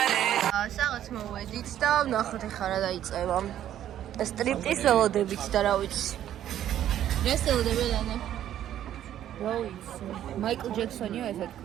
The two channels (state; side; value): quieter; left; 11.4 dB